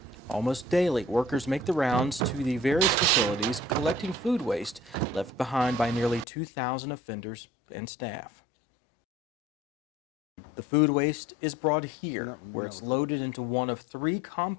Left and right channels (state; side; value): drops out; right; at 6.2 s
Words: Almost daily, workers make the rounds to the various facilities collecting food waste left behind by nearly 2,000 offenders and staff. The food waste is brought here, where it's loaded into one of 3